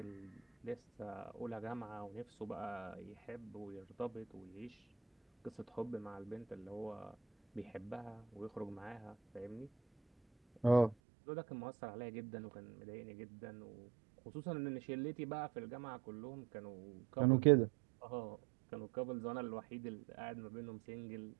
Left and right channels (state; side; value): drops out; left; at 11.0 s